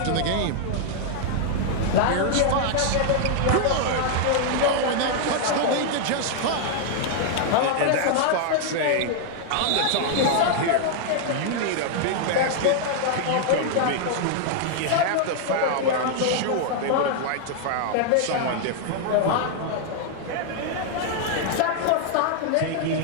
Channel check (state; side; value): different; both; correlation -0.01